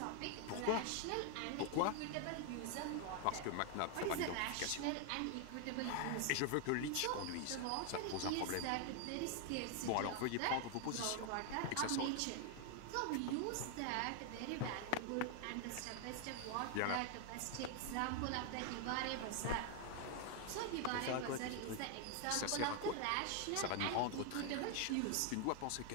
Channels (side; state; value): both; different; correlation 0.00